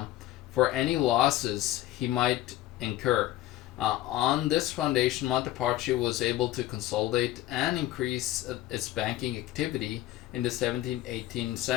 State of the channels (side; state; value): right; quieter; 15.0 dB